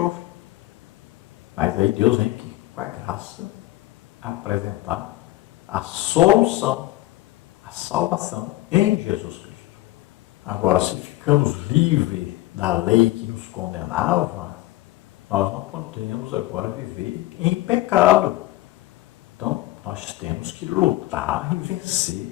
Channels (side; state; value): right; quieter; 17.2 dB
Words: Mas aí Deus vem aqui, com a graça, apresentar a solução, a salvação em Jesus Cristo. Agora, se ficamos livres da lei que nos condenava, nós não podemos agora viver em pecado. Então, nós temos que lutar e